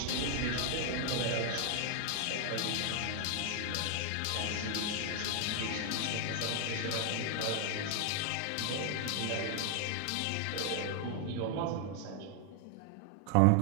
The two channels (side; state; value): both; different; correlation 0.00